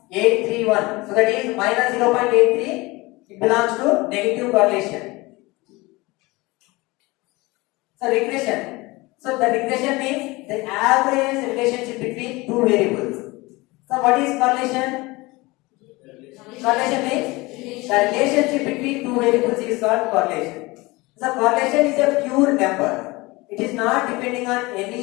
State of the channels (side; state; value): right; quieter; 22.6 dB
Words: So that is -0.83. It belongs to negative correlation. So regression. So the regression means the average relationship between two variables. So what is correlation? Correlation means the relationship between two variables is called correlation. So correlation is a pure number. It is not depending on any